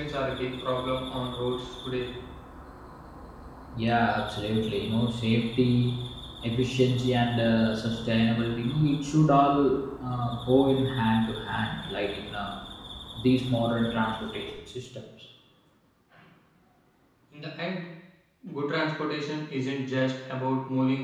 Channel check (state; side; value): identical; both; correlation 1.00